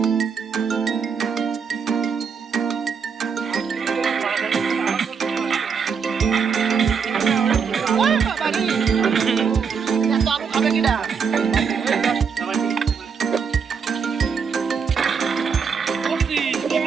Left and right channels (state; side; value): quieter; left; 6.2 dB